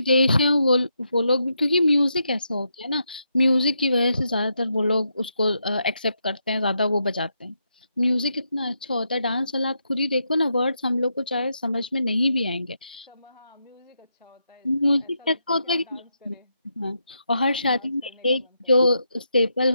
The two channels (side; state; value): both; inverted; correlation -0.81